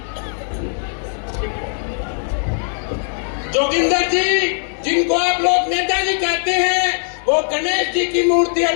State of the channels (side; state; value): right; silent; digital silence